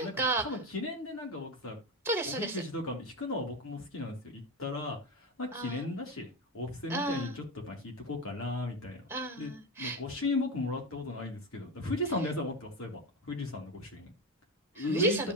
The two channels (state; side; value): normal; both; correlation 0.18